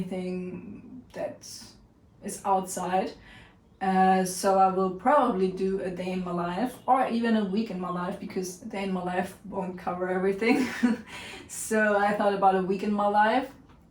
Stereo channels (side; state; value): both; identical; correlation 1.00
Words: that is outside. So I will probably do a day in my life, or even a week in my life, because a day in my life won't cover everything. So I thought about a week in my life.